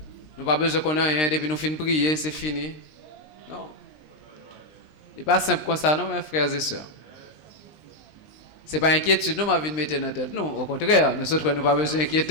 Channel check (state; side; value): late; right; 20 ms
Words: Nous pas besoin qu'on ait rien depuis nous fin prier, c'est fini. Non. Ce n'est pas simple comme ça, non, mes frères et sœurs. Ce n'est pas inquiétude, nous, ma vie de mettre dans la tête. Non, au contraire, nous autres, nous n'avons pas besoin